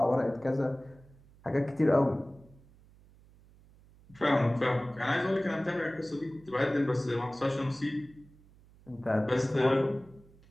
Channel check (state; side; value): noise; right; hum, 26 dB below the sound